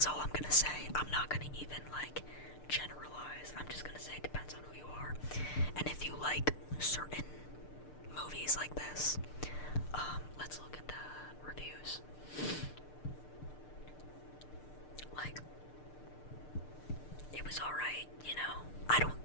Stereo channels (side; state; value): right; late; 6.7 ms